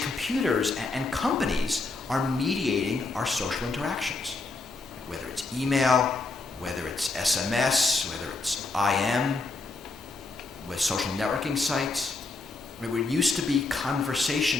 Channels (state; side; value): quieter; right; 3.5 dB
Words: and companies are mediating our social interactions. Whether it's email, whether it's SMS, whether it's IM, with social networking sites. I mean, what used to be